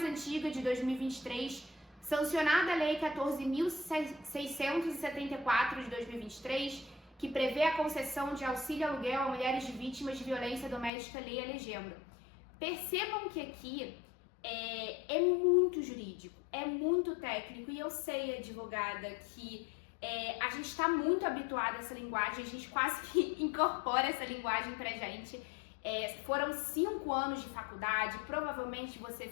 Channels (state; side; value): drops out; right; at 10.9 s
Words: antiga, de 2023, sancionada a Lei 14.674 de 2023, que prevê a concessão de auxílio aluguel a mulheres de vítimas de violência doméstica, lei a legenda. Percebam que aqui é muito jurídico, é muito técnico, e eu sei, advogada, que a gente está muito habituado a essa linguagem, a gente quase que incorpora essa linguagem pra gente. Foram 5 anos de faculdade, provavelmente você